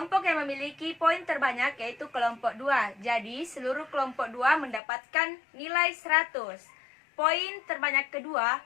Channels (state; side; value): drops out; right; at 4.8 s